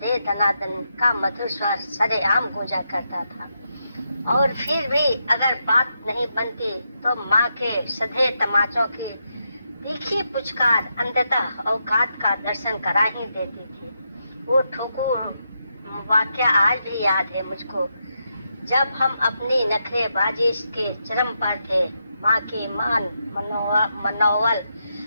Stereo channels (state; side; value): inverted; both; correlation -0.83